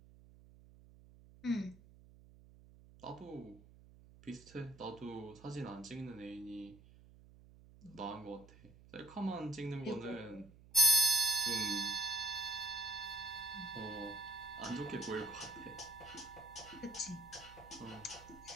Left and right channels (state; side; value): noise; right; hum, 22 dB below the sound